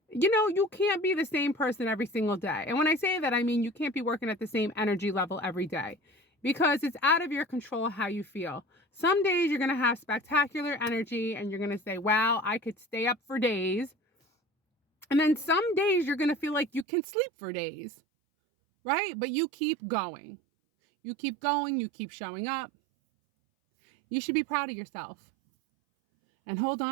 you can't be the same person every single day. And when I say that, I mean you can't be working at the same energy level every day because it's out of your control how you feel. Some days you're going to have spectacular energy and you're going to say, wow, I could stay up for days. And then some days you're going to feel like you can sleep for days, right? But you keep going. You keep going. You keep showing up. You should be proud of yourself and hold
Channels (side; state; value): left; drops out; at 16.9 s